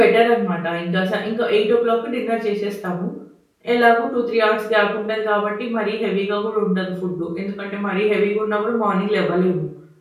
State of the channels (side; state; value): both; identical; correlation 1.00